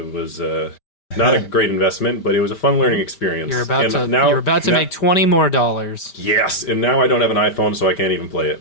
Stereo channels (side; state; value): right; late; 5.1 ms